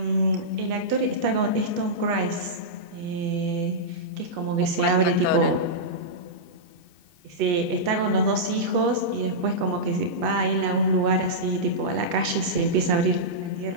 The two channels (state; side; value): late; left; 2.6 ms